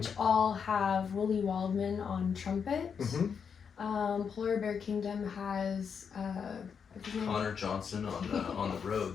all have Willie Waldman on trumpet. Polar Bear Kingdom has Connor Johnson on the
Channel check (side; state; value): right; quieter; 6.7 dB